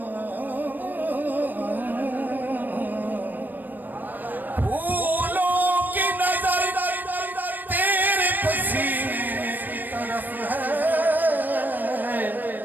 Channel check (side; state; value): left; late; 0.089 ms